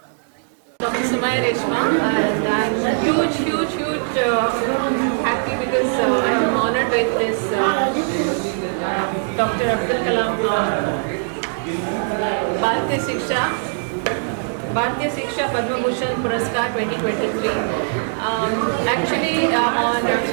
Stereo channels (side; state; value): left; silent; digital silence